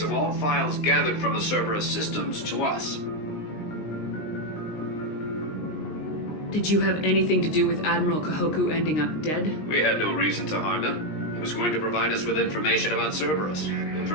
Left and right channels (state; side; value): late; right; 19 ms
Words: of all files gathered from the Cerberus systems to us. Did you have anything to do with Admiral Kahoku ending up dead? We had no reason to harm him. He was going to provide us with information about Cerberus.